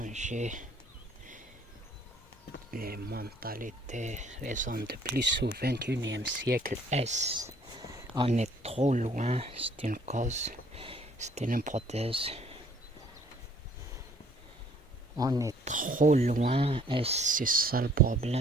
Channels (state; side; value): normal; both; correlation 0.60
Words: les mentalités. Les hommes de plus au XXIe siècle. On est trop loin, c'est une cause, c'est une hypothèse. On est trop loin et c'est ça le